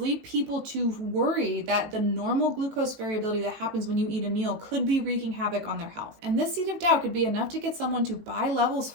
people to worry that the normal glucose variability that happens when you eat a meal could be wreaking havoc on their health. And this seed of doubt could be enough to get someone to buy Levels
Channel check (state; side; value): late; left; 19 ms